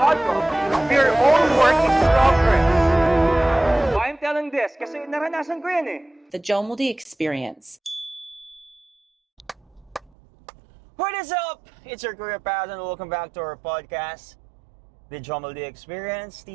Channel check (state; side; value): drops out; left; at 10.1 s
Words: will. We are all work in progress. Why I'm telling this? Kasi naranasan ko yan eh. The Jomoldi Experience. What is up? It's your career path and welcome back to our podcast, The Jomoldi Experience,